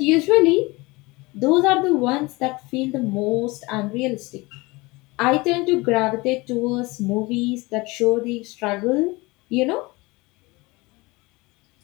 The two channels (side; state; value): right; quieter; 23.5 dB